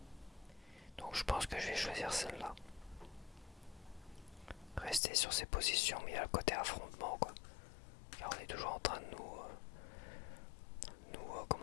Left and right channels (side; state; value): right; drops out; at 5.0 s